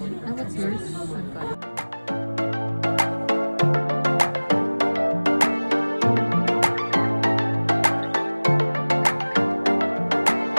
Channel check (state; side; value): inverted; both; correlation -1.00